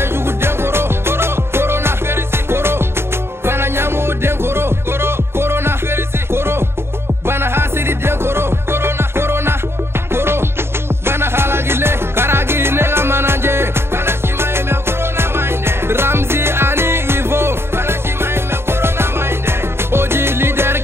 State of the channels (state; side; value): late; left; 0.12 ms